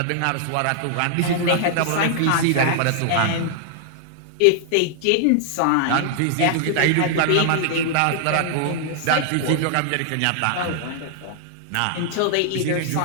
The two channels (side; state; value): both; different; correlation -0.01